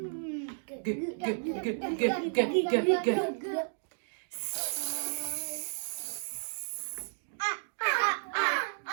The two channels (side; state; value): left; silent; digital silence